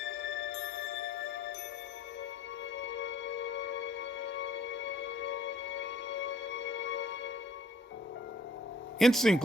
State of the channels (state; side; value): normal; both; correlation 0.59